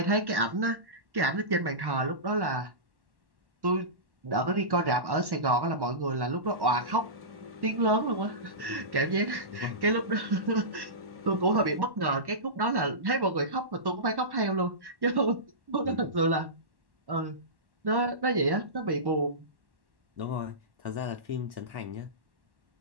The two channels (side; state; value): left; late; 1.1 ms